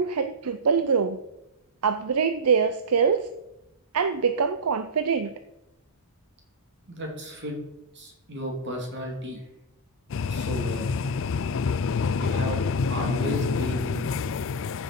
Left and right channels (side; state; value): both; normal; correlation -0.06